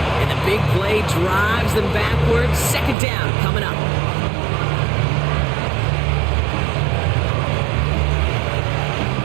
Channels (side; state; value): left; drops out; at 3.0 s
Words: And the big play drives them backwards. 2nd down coming up.